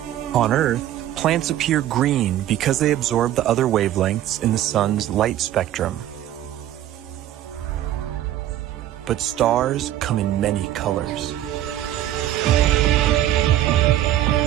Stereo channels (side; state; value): left; quieter; 12.7 dB